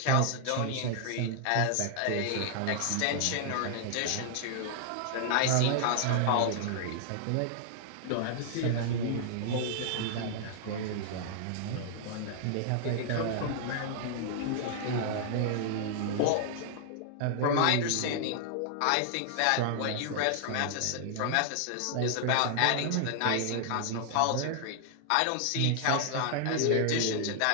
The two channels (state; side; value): different; both; correlation -0.01